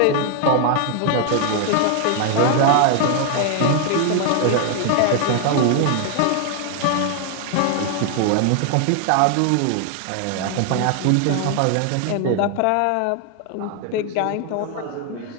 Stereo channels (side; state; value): both; different; correlation 0.00